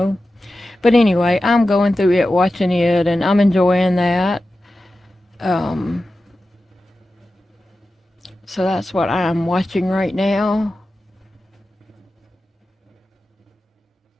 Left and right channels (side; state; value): both; normal; correlation 0.93